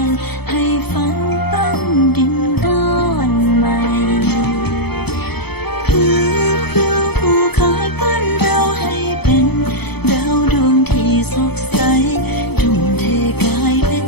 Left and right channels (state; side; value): late; right; 0.97 ms